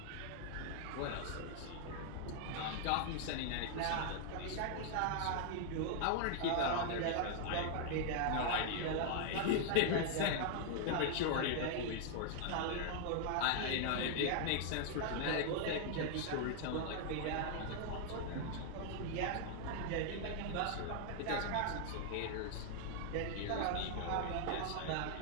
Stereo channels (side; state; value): both; different; correlation 0.00